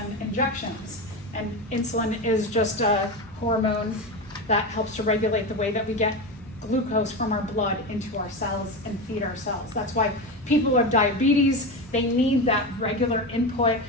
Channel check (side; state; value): both; normal; correlation 0.19